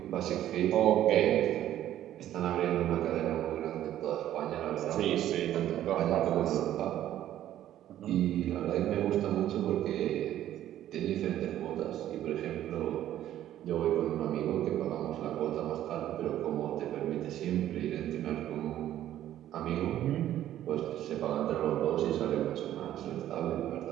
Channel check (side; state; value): left; quieter; 12.3 dB